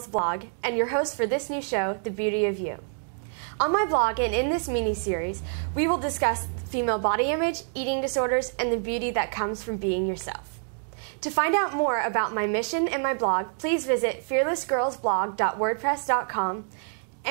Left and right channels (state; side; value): silent; left; 59 dB below the other